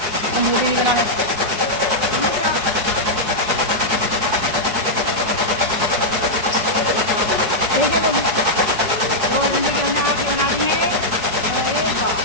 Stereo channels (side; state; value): left; late; 4.7 ms